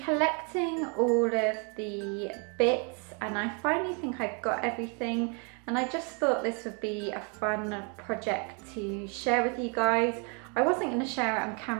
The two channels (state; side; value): quieter; left; 36.4 dB